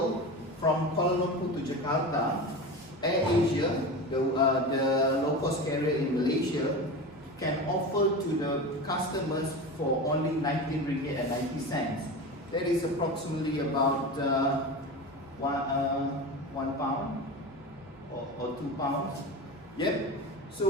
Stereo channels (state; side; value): normal; both; correlation 0.27